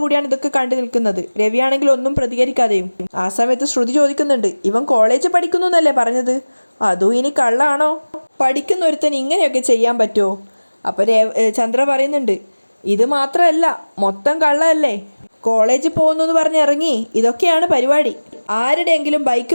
ഇതൊക്കെ കണ്ടു നിൽക്കുന്നത്. രവിയാണെങ്കിൽ ഒന്നും പ്രതികരിക്കാതെയും. ആ സമയത്ത് ശ്രുതി ചോദിക്കുന്നുണ്ട്, ഇവൻ കോളേജ് പഠിക്കുന്നു എന്നല്ലേ പറഞ്ഞത്? അതും ഇനി കള്ളാണോ? പഠിക്കുന്ന ഒരുത്തൻ ഇങ്ങനെയൊക്കെ ചെയ്യാൻ പറ്റുമോ? അപ്പോൾ ചന്ദ്ര പറയുന്നുണ്ട്, ഇത് മാത്രമല്ല, മൊത്തം കള്ളല്ലേ. കോളേജിൽ പോകുന്നു എന്ന് പറഞ്ഞ് ഇറങ്ങി ഇതൊക്കെയാണ് പരിപാടി. ആരുടെയെങ്കിലും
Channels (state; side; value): inverted; both; correlation -1.00